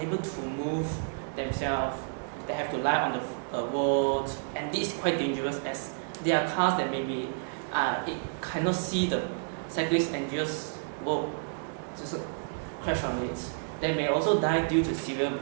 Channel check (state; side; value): silent; left; digital silence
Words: to move themselves. They have to lie on the road, and this is quite dangerous as there are cars that maybe it cannot see the cyclist and just crash on it. They may also die due to severe